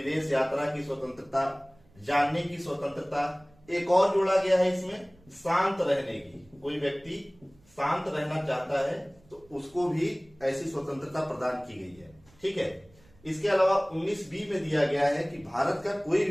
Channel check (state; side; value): noise; right; rumble, 29 dB below the sound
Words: यात्रा की स्वतंत्रता, जानने की स्वतंत्रता। एक और जोड़ा गया है इसमें शांत रहने की, कोई व्यक्ति शांत रहना चाहता है तो उसको भी ऐसी स्वतंत्रता प्रदान की गई है। ठीक है, इसके अलावा 19B में दिया गया है कि भारत का कोई